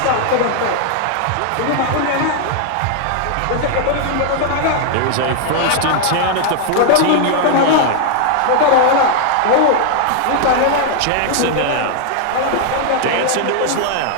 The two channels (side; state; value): both; different; correlation 0.00